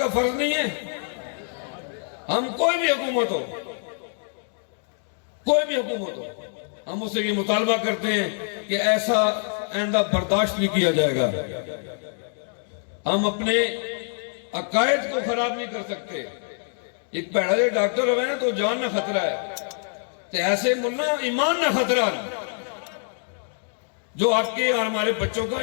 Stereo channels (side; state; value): right; silent; 62 dB below the other